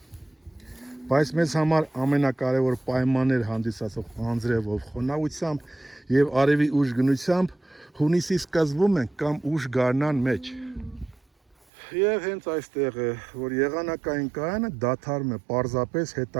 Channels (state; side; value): drops out; left; at 11.6 s